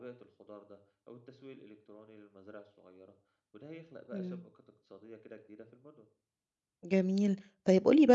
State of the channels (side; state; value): both; identical; correlation 1.00